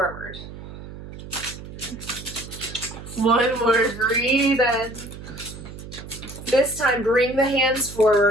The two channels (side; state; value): right; noise; hum, 13 dB below the sound